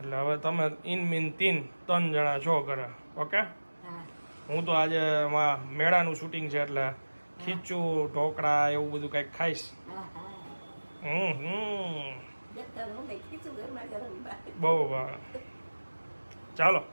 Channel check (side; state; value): both; inverted; correlation -1.00